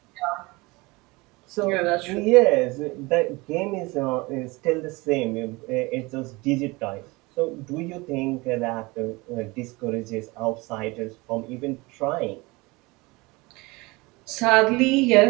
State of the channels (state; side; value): quieter; left; 23.8 dB